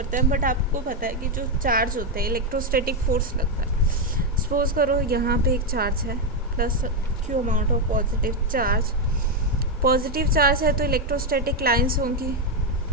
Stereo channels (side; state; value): both; normal; correlation 0.04